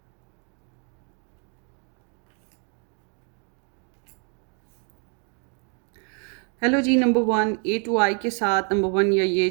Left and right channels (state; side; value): quieter; left; 39.5 dB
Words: Hello जी, नंबर 1 ए टू आई के साथ नंबर 1 या ये